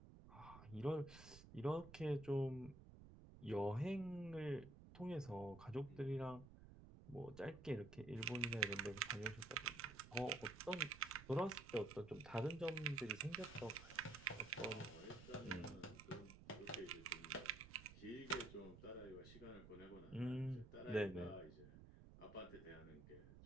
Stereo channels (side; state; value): right; noise; rumble, 16 dB below the sound